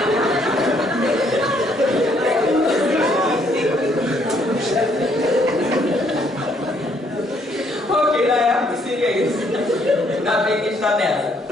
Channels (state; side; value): normal; both; correlation 0.68